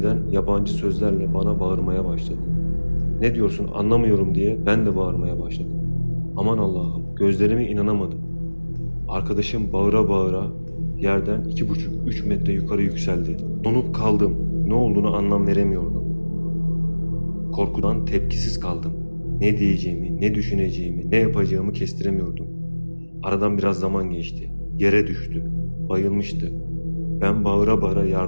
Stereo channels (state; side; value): inverted; both; correlation -1.00